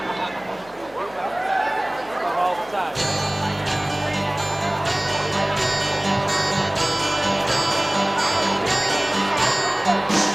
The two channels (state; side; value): noise; left; hum, 24 dB below the sound